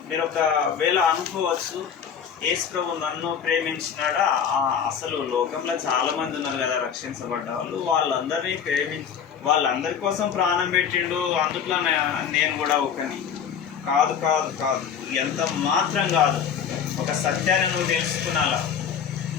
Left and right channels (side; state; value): right; quieter; 7.7 dB